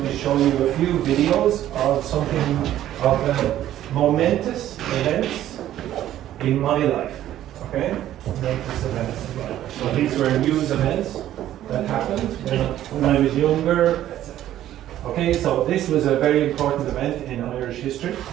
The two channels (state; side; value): quieter; left; 12.6 dB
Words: to show you a few videos of momentous events in my life. Okay? Momentous events in my life. So these were news events that happened when I was younger, etc. Okay, so this was a very important event in Irish history.